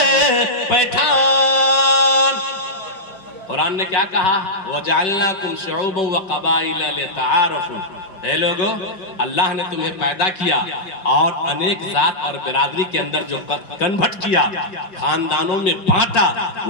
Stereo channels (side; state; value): right; late; 5.2 ms